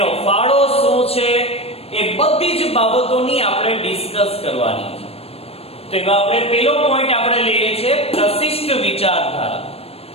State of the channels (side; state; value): right; late; 0.29 ms